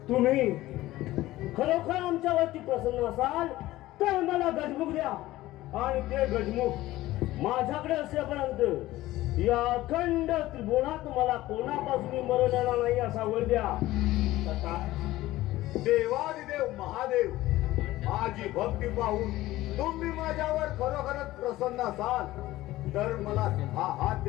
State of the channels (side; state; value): right; quieter; 16.6 dB